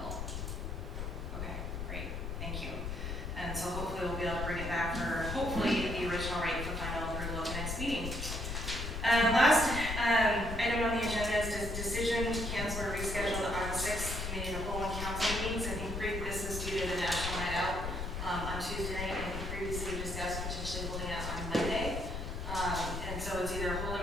Okay, great, thank you. And so hopefully we'll be able to bring it back for hopefully the original rate for final approval at the next meeting. Last item on the agenda is decision to cancel or reschedule the August 6th committee of the whole and council meetings. I think this is due to the National Night Out on Tuesday night, and I think previously we discussed potentially holding it on Monday. And so it's either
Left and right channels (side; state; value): left; noise; rumble, 4 dB below the sound